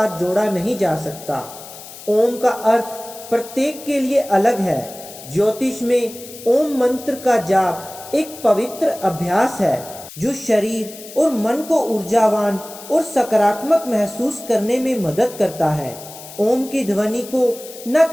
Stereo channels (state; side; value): noise; left; hiss, 16 dB below the sound